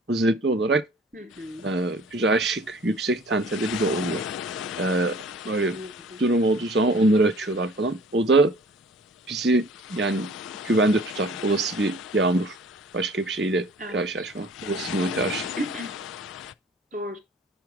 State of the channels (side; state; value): both; normal; correlation 0.50